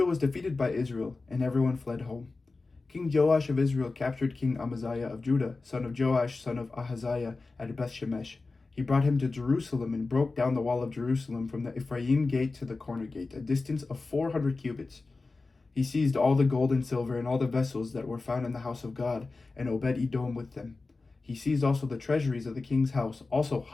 was defeated by Israel, and everyone fled home. King Joash of Israel captured King Amaziah of Judah, son of Joash, son of Ahaziah, at Bethshemesh. He brought him to Jerusalem and broke down the wall of Jerusalem from the Ephraim gate to the corner gate, a distance of 400 cubits. He seized all the gold and silver and all the vessels that were found in the house of God, and Obed-Edom with them. He seized also the treasuries of the king's house, also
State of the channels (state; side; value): quieter; right; 3.7 dB